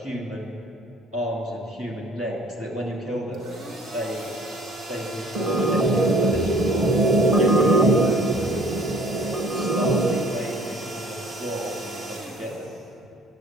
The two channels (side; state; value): both; normal; correlation 0.53